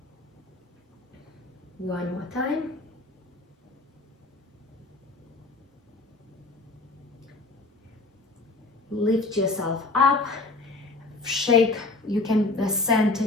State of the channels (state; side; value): quieter; right; 3.2 dB